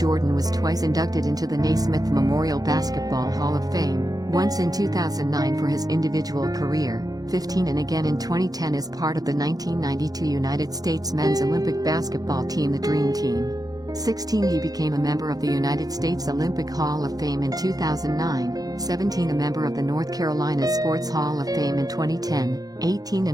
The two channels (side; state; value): left; late; 0.18 ms